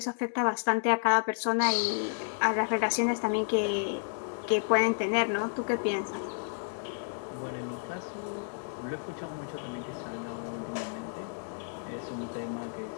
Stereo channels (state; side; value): silent; right; 57 dB below the other